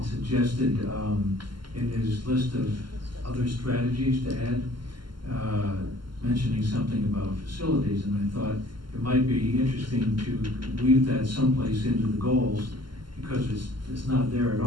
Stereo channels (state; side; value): late; left; 0.72 ms